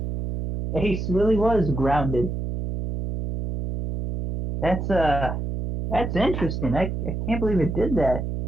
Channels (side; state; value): right; noise; hum, 4 dB below the sound